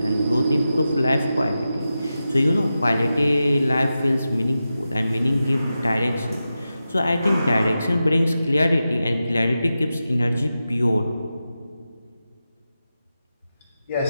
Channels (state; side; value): inverted; both; correlation -0.92